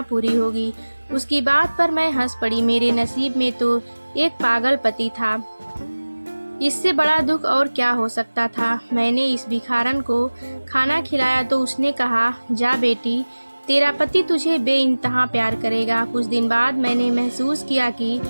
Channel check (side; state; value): both; inverted; correlation -1.00